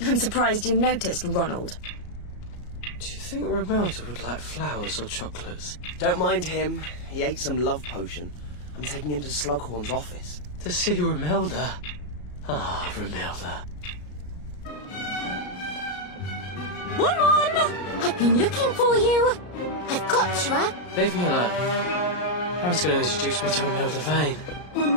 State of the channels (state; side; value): late; right; 34 ms